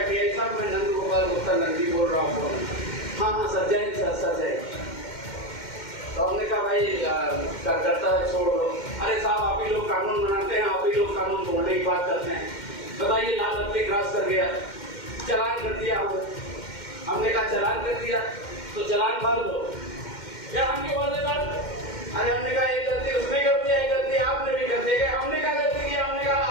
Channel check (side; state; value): right; late; 2.1 ms